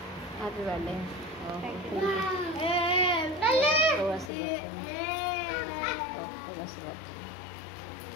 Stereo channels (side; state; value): right; drops out; at 4.3 s